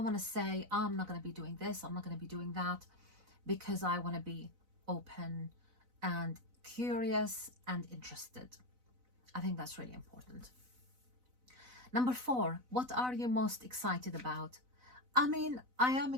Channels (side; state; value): left; late; 4.0 ms